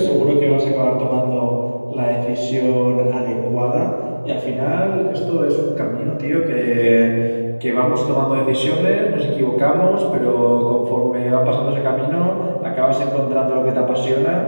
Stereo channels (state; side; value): inverted; both; correlation -1.00